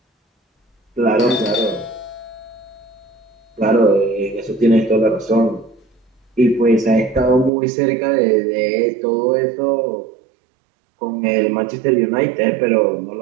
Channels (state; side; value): drops out; left; at 7.5 s